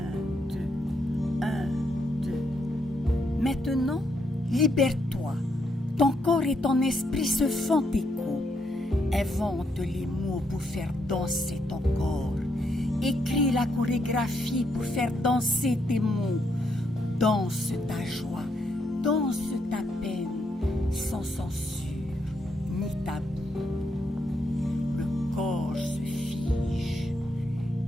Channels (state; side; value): normal; both; correlation 0.77